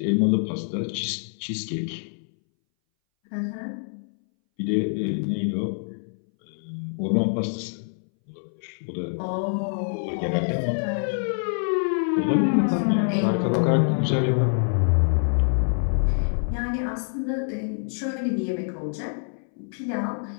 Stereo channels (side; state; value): right; silent; 61 dB below the other